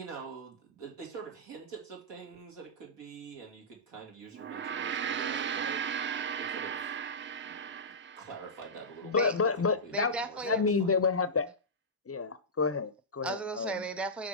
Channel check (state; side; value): normal; both; correlation -0.14